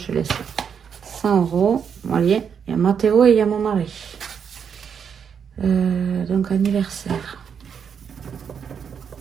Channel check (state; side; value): quieter; left; 7.2 dB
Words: laisse 100 €. Voyez, il y a Mathéo et il y a mon mari. Donc, anniversaire.